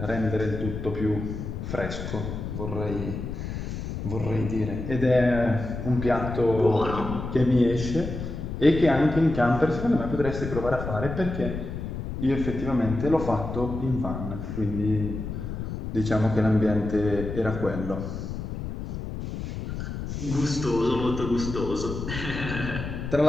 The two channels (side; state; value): left; noise; rumble, 6 dB below the sound